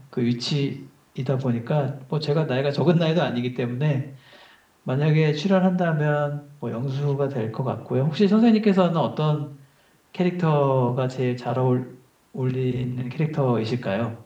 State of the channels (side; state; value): both; identical; correlation 1.00